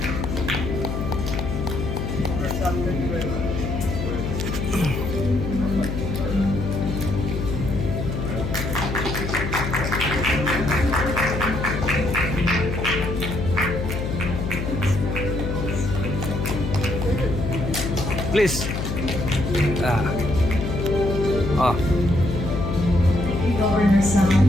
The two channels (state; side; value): noise; left; hum, 3 dB below the sound